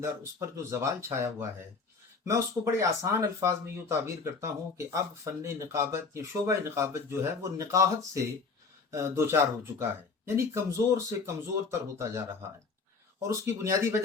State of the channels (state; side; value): quieter; right; 4.6 dB